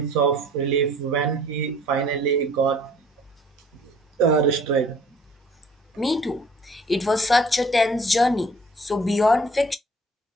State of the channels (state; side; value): normal; both; correlation 0.54